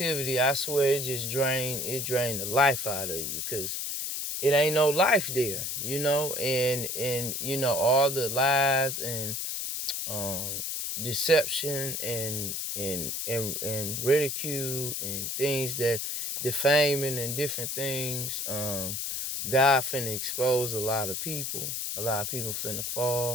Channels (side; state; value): left; noise; hiss, 3 dB below the sound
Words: I swear, it drained the life out of you. Because it ain't no life there, and all the lies and deception and ridicule and things that defaming and different things. God finna expose a lot of people. A lot of people finna